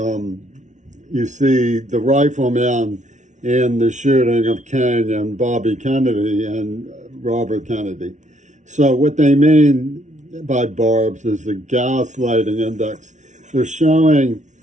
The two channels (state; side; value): late; left; 0.35 ms